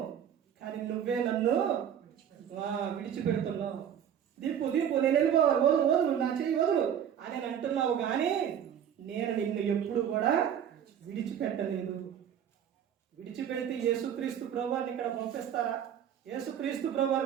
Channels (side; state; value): left; quieter; 9.2 dB